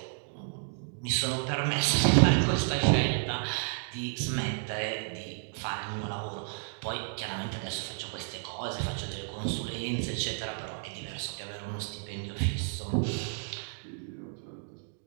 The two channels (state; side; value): silent; left; 57 dB below the other